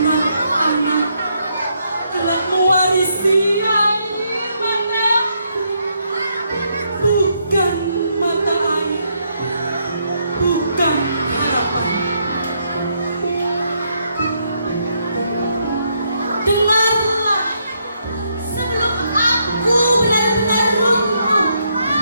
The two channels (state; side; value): inverted; both; correlation -0.76